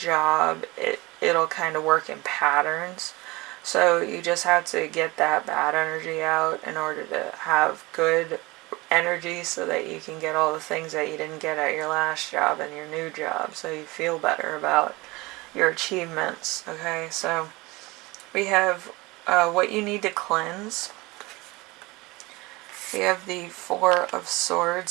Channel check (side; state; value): left; quieter; 22.7 dB